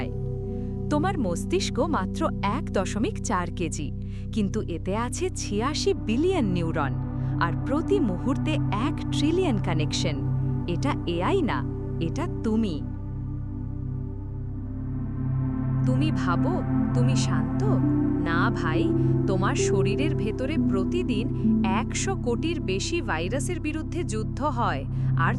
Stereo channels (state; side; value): identical; both; correlation 1.00